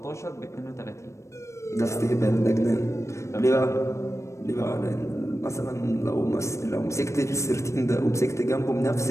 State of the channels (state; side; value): late; right; 0.14 ms